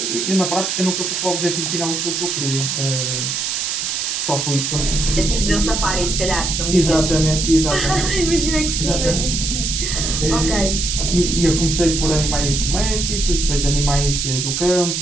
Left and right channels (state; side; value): noise; right; hiss, 1 dB below the sound